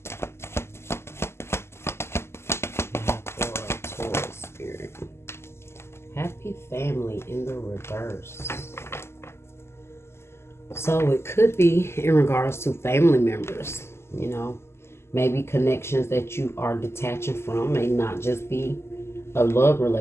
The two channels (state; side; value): late; right; 0.12 ms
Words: Happy family in the reverse. So it could be in regards to family members, maybe connections that you are detaching from may not just be a love